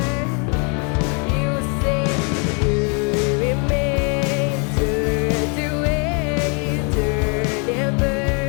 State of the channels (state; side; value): quieter; right; 36.4 dB